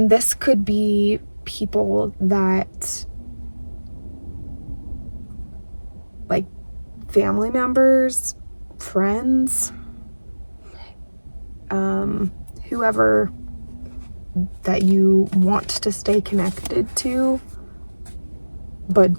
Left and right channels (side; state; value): both; inverted; correlation -1.00